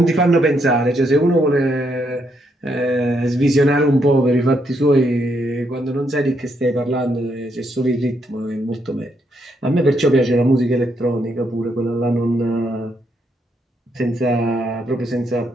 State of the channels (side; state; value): both; normal; correlation 0.76